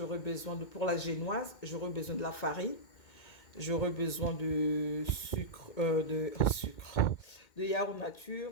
besoin de, pour la génoise, j'aurai besoin de la farine. J'aurai besoin de sucre, de yaourt nature.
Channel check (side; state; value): right; late; 2.2 ms